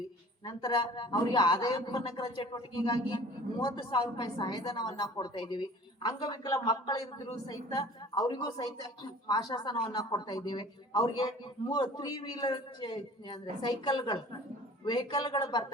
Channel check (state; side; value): normal; both; correlation 0.46